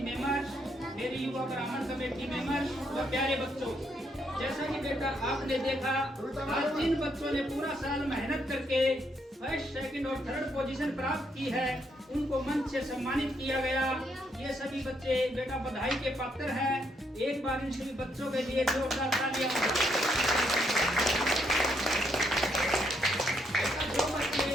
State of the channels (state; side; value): normal; both; correlation 0.75